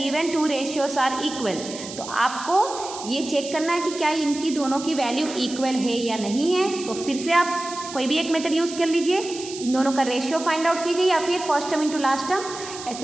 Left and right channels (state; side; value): noise; right; hiss, 12 dB below the sound